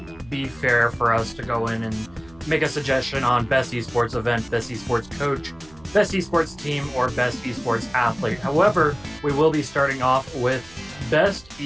be fair for us to go in and make a suggestion on best esports event, best esports coach, best esports team, or best esports athlete. However, we will be starting off with best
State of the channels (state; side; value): noise; right; hum, 25 dB below the sound